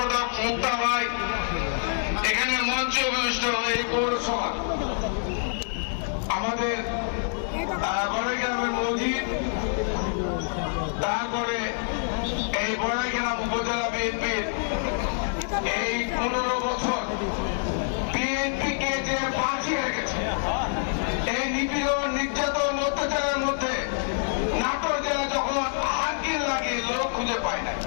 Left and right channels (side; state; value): right; silent; digital silence